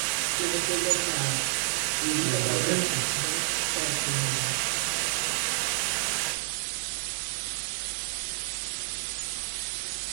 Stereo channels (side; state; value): left; silent; digital silence